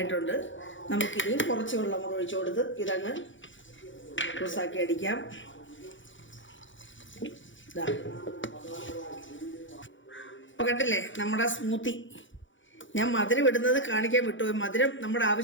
നമുക്കിനിയും കുറച്ച് വെള്ളം കൂടെ ഒഴിച്ചു കൊടുത്ത് ഇതങ്ങ് ജ്യൂസാക്കി അടിക്കാം. കണ്ടില്ലേ നമ്മുടെ സ്മൂത്തി? ഞാൻ മധുരം ഇടുന്നത് കാണിക്കാൻ വിട്ടുപോയി. മധുരം നമ്മുടെ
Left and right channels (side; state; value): right; late; 0.56 ms